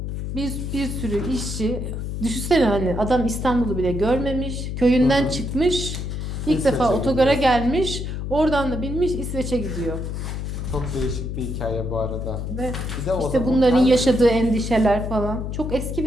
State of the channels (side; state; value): left; noise; hum, 4 dB below the sound